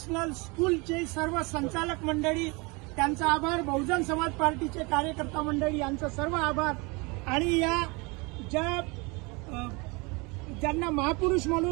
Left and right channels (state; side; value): quieter; left; 27.6 dB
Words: स्कूलचे सर्व संचालक मंडळी, त्यांचा आभार. बहुजन समाज पार्टीचे कार्यकर्ता मंडळी यांचा सर्व आभार. आणि या ज्यांना महापुरुष